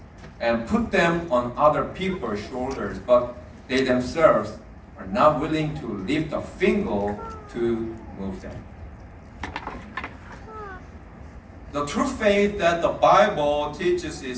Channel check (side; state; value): both; identical; correlation 1.00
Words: and put them on other people's shoulders, but they themselves are not willing to lift a finger to move them. The true faith that the Bible teaches